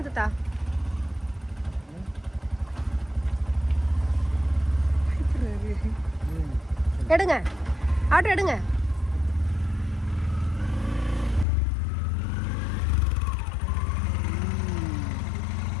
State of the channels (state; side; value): drops out; right; at 11.5 s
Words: தாத்தா. எடுங்க, ஆட்டோ எடுங்க.